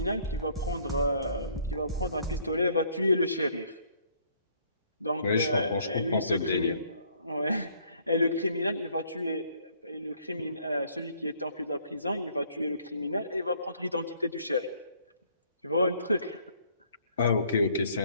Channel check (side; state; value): both; inverted; correlation -0.63